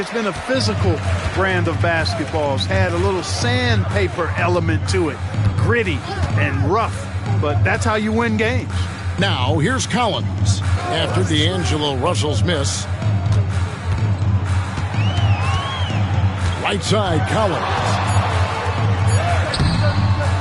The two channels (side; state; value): both; identical; correlation 1.00